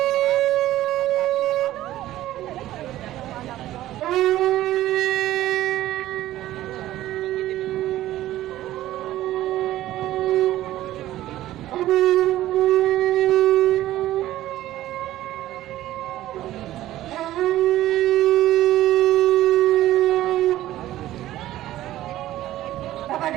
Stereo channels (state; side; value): quieter; left; 14.5 dB